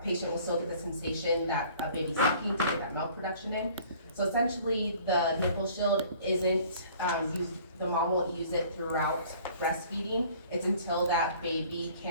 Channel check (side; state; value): both; inverted; correlation -0.52